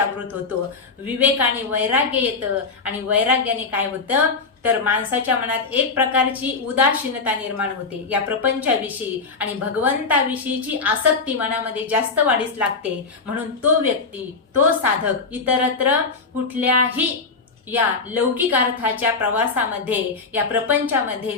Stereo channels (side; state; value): right; quieter; 4.4 dB